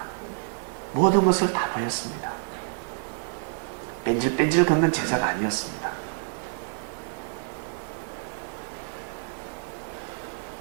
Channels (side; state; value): left; silent; 58 dB below the other